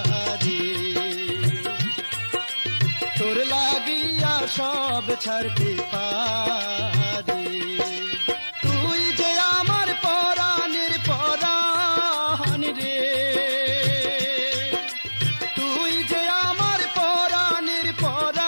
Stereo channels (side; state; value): both; inverted; correlation -1.00